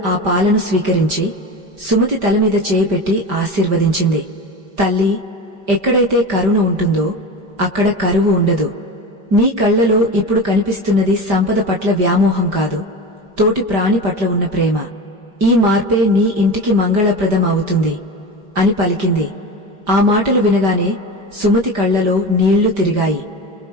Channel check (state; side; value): late; left; 5.1 ms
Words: ఆ పాలను స్వీకరించి సుమతి తలమీద చేయి పెట్టి ఆశీర్వదించింది. తల్లి, ఎక్కడైతే కరుణ ఉంటుందో అక్కడ కరువు ఉండదు. నీ కళ్లలో ఇప్పుడు కనిపిస్తున్నది సంపద పట్ల వ్యామోహం కాదు, తోటి ప్రాణి పట్ల ఉన్న ప్రేమ. ఈ మార్పే నీ ఇంటికి మంగళప్రదం అవుతుంది అని పలికింది. ఆ మాటలు వినగానే సుమతి కళ్లలో నీళ్లు తిరిగాయి.